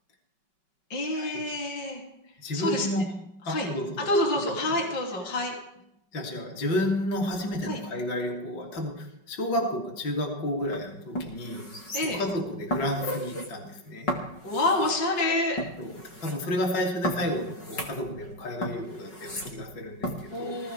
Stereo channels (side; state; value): right; late; 5.3 ms